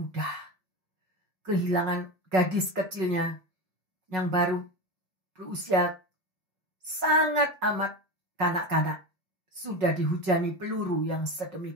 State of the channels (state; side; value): late; left; 5.4 ms